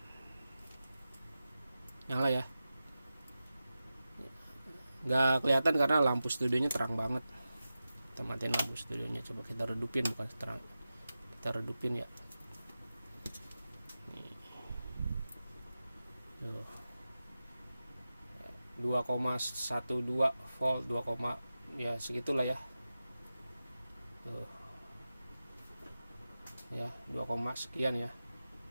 Nyala ya, nggak kelihatan karena lampu studionya terang banget. Kita matiin lampu studionya, coba kita redupin, bukan terang, kita redupin ya. Nih. 2,12 volt, 2, ya segitulah ya. Tuh. Ya, 2, sekian ya.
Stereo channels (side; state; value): both; inverted; correlation -0.93